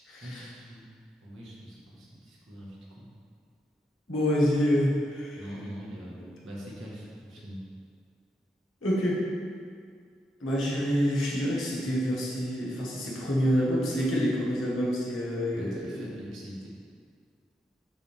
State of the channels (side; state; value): both; normal; correlation 0.82